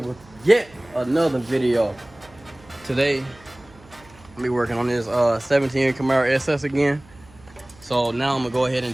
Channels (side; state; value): right; noise; hum, 25 dB below the sound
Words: yet another video. Today, I'm be working on this 17 Camaro SS again. So now I'm gonna go ahead